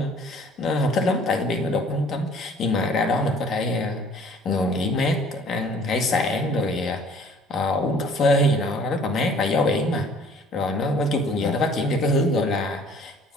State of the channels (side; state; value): both; normal; correlation 0.54